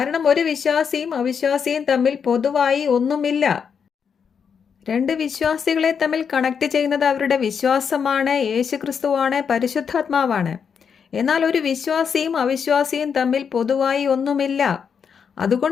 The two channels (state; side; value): quieter; right; 6.8 dB